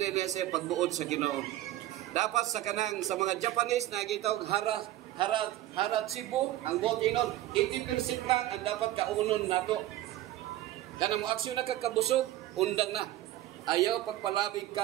sa pagbuod sa Ginoo. Dapat sa kanang sa mga Japanese na gitawag haratsibu, ang bot inon 80% lang ang dapat kaunon nato. Kana mo aksyon na kakabusog, undan na. Ayaw pagpalabig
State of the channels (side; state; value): left; quieter; 14.8 dB